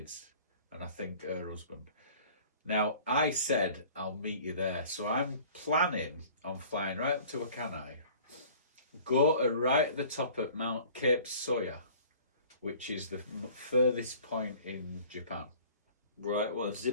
and I think her husband. Now, I said I'll meet you there, so I'm planning on flying right up to Akanai, go to right at the top at Mount Cape Soya, which is the furthest point in Japan. Right, well,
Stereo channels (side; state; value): both; inverted; correlation -0.48